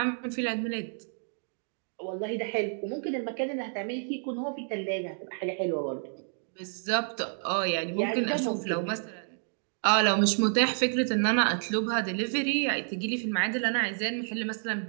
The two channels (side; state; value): left; silent; digital silence